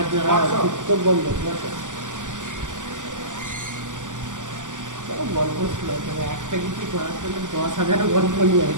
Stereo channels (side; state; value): left; late; 0.87 ms